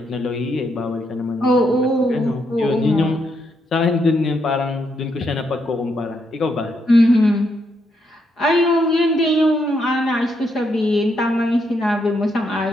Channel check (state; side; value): normal; both; correlation 0.78